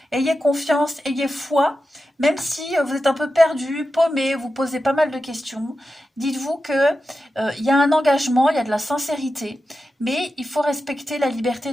Ayez confiance, ayez foi, même si vous êtes un peu perdu, paumé, vous posez pas mal de questions. Dites-vous que y a un engagement, il y a de la sincérité, mais il faut respecter la liberté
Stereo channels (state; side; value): normal; both; correlation 0.91